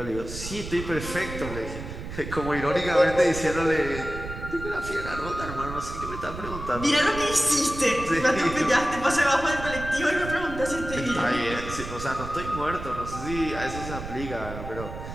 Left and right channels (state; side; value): noise; right; rumble, 9 dB below the sound